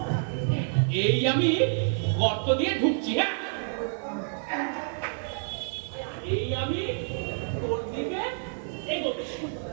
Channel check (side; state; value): left; silent; digital silence